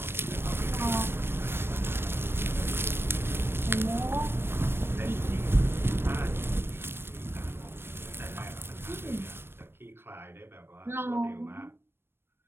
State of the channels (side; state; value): left; late; 0.11 ms